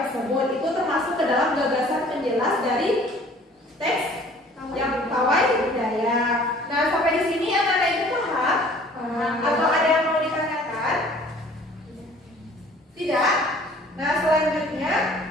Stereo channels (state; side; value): normal; both; correlation 0.52